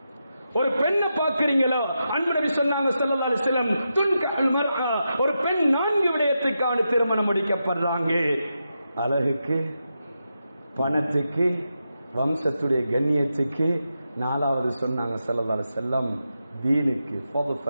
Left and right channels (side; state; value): both; inverted; correlation -0.87